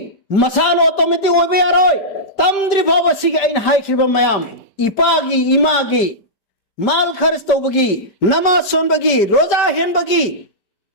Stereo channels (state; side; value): late; right; 5.0 ms